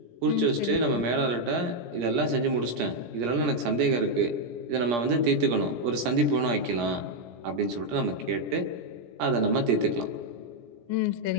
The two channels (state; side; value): late; left; 17 ms